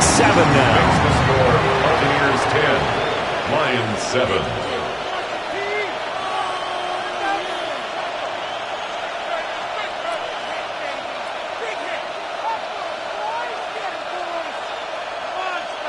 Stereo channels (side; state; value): both; identical; correlation 1.00